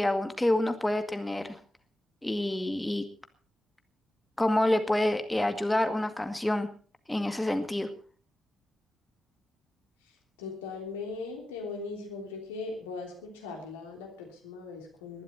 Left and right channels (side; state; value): both; normal; correlation 0.93